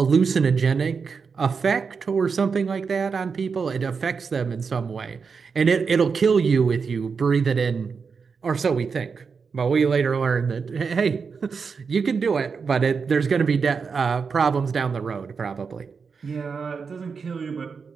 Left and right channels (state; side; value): quieter; left; 5.5 dB